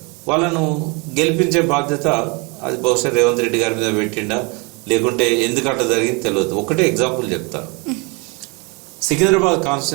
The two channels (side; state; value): left; quieter; 29.7 dB